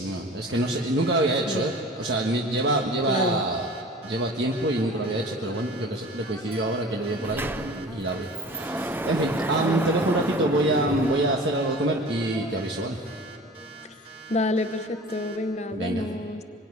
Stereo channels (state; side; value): normal; both; correlation 0.41